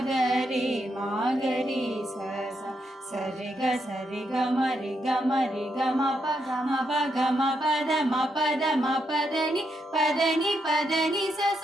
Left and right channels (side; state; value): both; normal; correlation 0.80